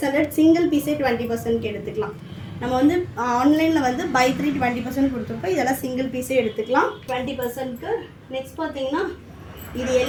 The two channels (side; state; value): both; identical; correlation 1.00